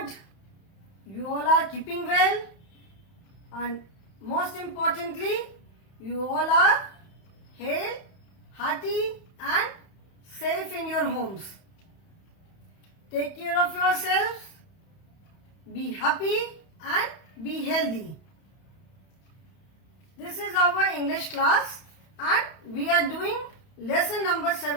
you all are keeping well, and most importantly, you all are hale, hearty and safe in your homes. Take care of yourselves, be happy and be healthy. This is our English class and we are doing lesson number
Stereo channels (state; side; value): late; right; 31 ms